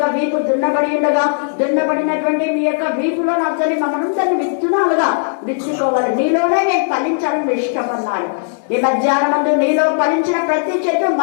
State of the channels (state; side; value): silent; right; digital silence